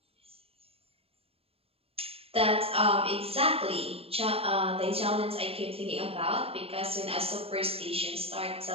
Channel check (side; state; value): left; late; 0.28 ms